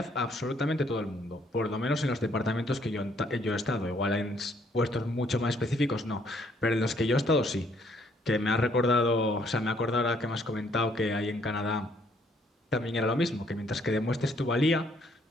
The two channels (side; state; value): both; normal; correlation 0.67